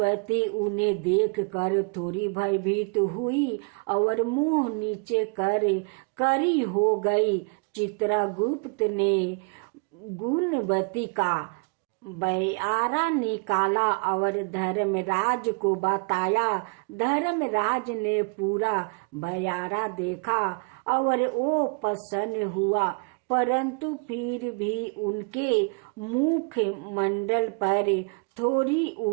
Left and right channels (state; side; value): quieter; left; 35.8 dB